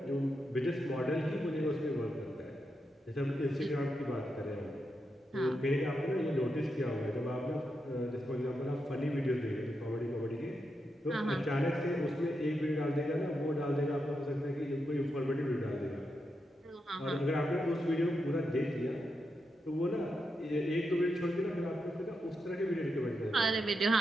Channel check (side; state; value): both; normal; correlation 0.85